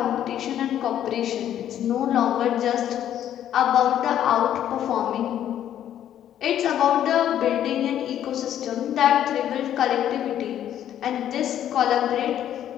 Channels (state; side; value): quieter; right; 10.8 dB